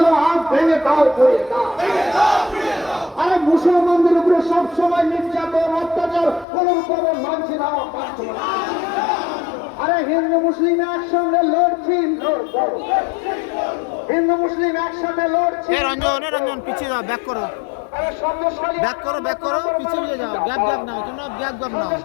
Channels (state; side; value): drops out; right; at 6.5 s